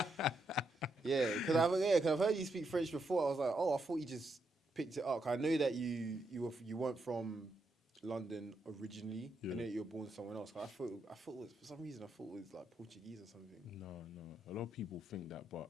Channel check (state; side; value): normal; both; correlation 0.81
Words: Yeah, because I've heard you speak French before. I was like, oh, I thought you just picked it up. 'Cause I know that you weren't from London originally. I Yeah. know that you were born somewhere else. 'Cause I thought it was, for some reason I thought it was like Portuguese or something. No, no. A lot of people think that, but